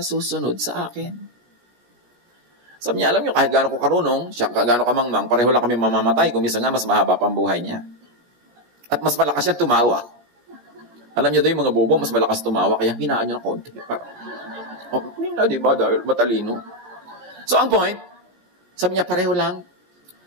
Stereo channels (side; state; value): left; late; 17 ms